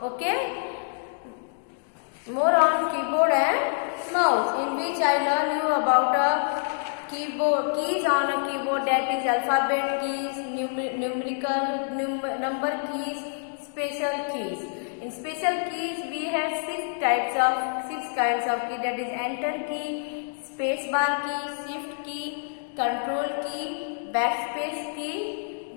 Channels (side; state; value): right; silent; digital silence